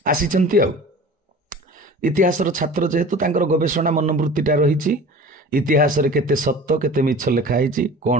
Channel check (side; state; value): both; normal; correlation 0.40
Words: ଆସିଛନ୍ତି। ଆଉ ଇତିହାସର ଛାତ୍ର ଯେହେତୁ ତାଙ୍କର ଗବେଷଣା ମନୋବୃତ୍ତିଟା ରହିଛି, ଇତିହାସରେ କେତେ ସତ କେତେ ମିଛ ଲେଖା ହେଇଛି, କ'ଣ